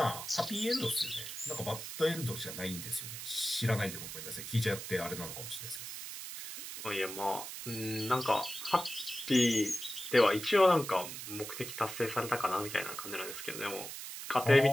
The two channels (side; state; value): right; noise; hiss, 8 dB below the sound